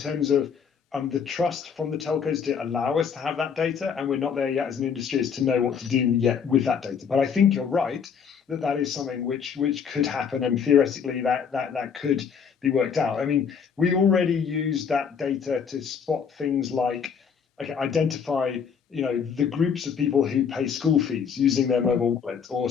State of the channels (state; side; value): quieter; right; 6.8 dB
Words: of the trust from the telcos to allow us to have that data, and we're not there yet as an industry as to know what to do yet with that data. But I think you're right that is something which could happen, and theoretically that could be worked out. I mean, we already use that data to spot things like, identify the groups of people who pay school fees using their mobile wallet, or